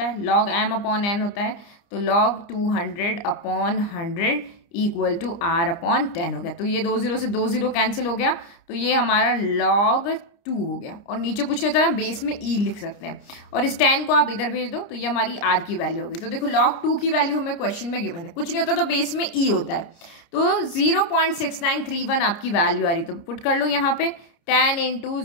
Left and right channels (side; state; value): right; late; 29 ms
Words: है, log m अपॉन n होता है। तो log 200 upon 100 equal to r upon 10 हो गया। तो ये 2 0 से 2 0 कैंसिल हो गया, तो ये हमारा log 2 हो गया। और नीचे कुछ नहीं होता, बेस में e लिख सकते हैं, और इस 10 को आप इधर भेज दो, तो ये हमारी r की वैल्यू हो गई। तो देखो log 2 की वैल्यू हमें क्वेश्चन में गिवन है, कुछ नहीं होता तो बेस में e होता है। तो 0.6931 आपकी वैल्यू आ रही, तो पुट कर लो यहाँ पे 10 इंटू